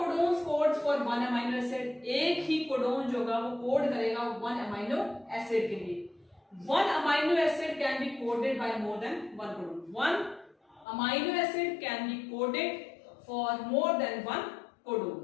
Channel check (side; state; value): right; drops out; at 10.9 s